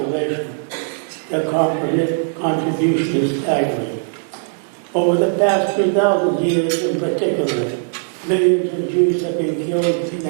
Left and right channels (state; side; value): silent; left; digital silence